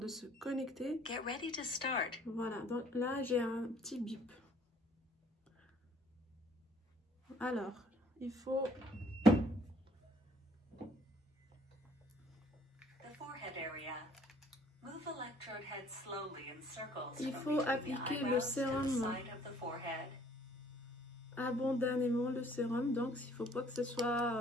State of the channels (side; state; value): both; normal; correlation 0.59